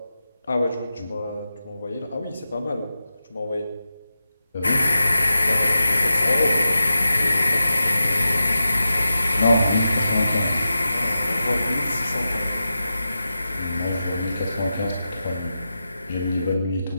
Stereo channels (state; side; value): inverted; both; correlation -0.91